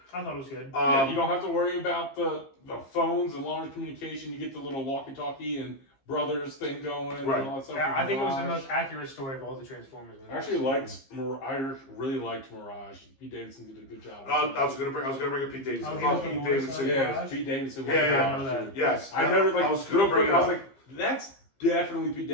I thought it was good. Yeah, you don't have to worry about the phones and long communication. You get the little walkie-talkie and brothers thing going Right. and all that stuff. Yeah, I think it was the Mirage. most accurate story of all the Transformers movies. I actually really liked Mirage. Pete Davidson did a good job. I was gonna bring up Pete Davidson. Oh, I he was thought the Pete voice Davidson. of- Yeah, it was Pete Davidson. Yeah, I know that. Yes. I noted like I was real gonna bring quick. it I was up. like, that's definitely Pete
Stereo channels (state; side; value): late; right; 15 ms